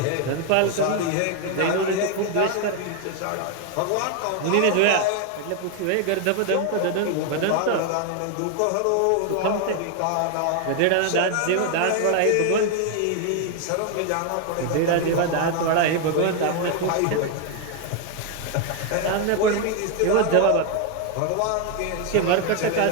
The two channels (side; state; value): both; different; correlation 0.01